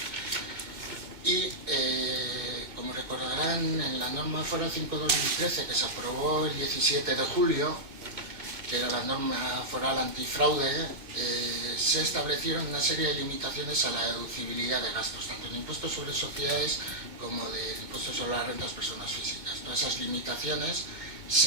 Y, como recordarán, en la norma foral 5/2013 que se aprobó el 17 de julio, que era la norma foral antifraude, se establecieron una serie de limitaciones a la deducibilidad de gastos, tanto en impuestos sobre sociedades como del impuesto sobre las rentas personas físicas. Todas esas limitaciones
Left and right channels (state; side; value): late; left; 2.2 ms